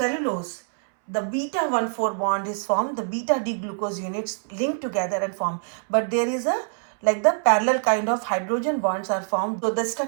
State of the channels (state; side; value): silent; left; 62 dB below the other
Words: the beta 1,4 bond is formed, the beta D-glucose units link together and form. But there is a, like the parallel kind of hydrogen bonds are formed. So the